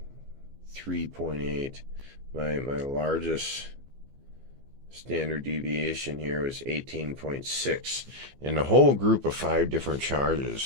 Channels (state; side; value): late; left; 15 ms